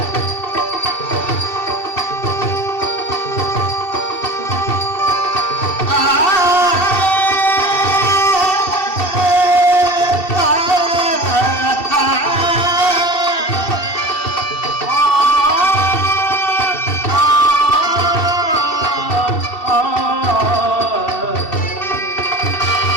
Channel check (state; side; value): late; right; 2.7 ms